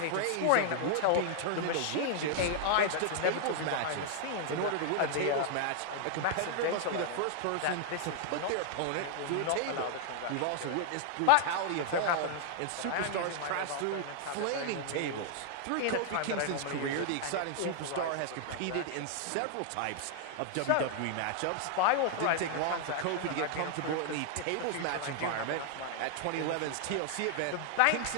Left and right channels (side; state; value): both; different; correlation 0.00